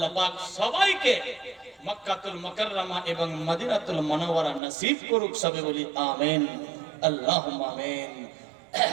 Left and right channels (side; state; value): left; drops out; at 4.6 s